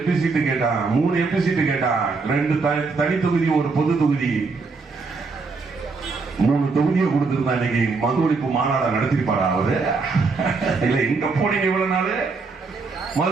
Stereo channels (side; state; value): left; quieter; 4.3 dB